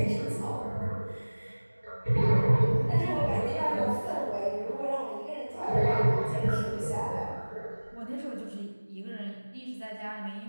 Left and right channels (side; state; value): both; inverted; correlation -1.00